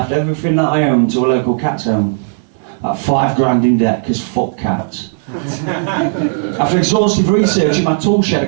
everything that I owned to a local cat's home. At $5 in debt, because fuck cats. After exhaustive research in my tool shed, I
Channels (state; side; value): silent; left; digital silence